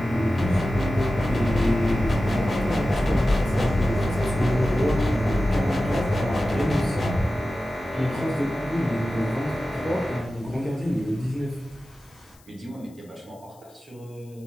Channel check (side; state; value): left; noise; hiss, 30 dB below the sound